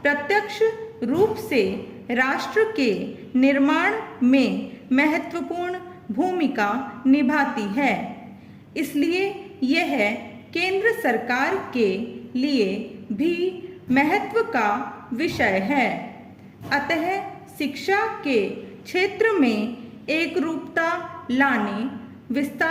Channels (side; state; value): both; identical; correlation 1.00